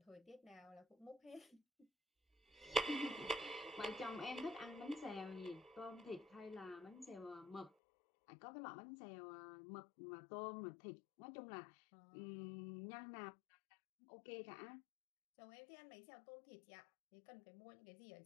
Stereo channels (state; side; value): drops out; right; at 7.7 s